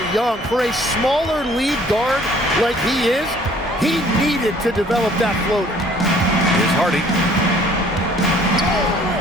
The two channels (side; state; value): both; normal; correlation 0.57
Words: Young. For a smaller lead guard like he is, he needed to develop that floater. Here's Hardy.